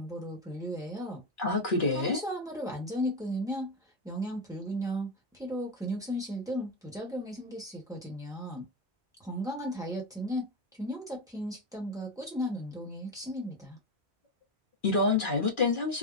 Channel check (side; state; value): both; normal; correlation 0.13